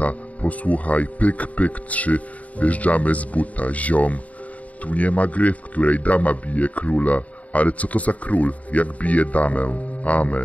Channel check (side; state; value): right; late; 0.069 ms